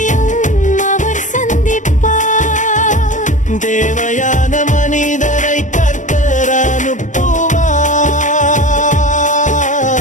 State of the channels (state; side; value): late; right; 0.36 ms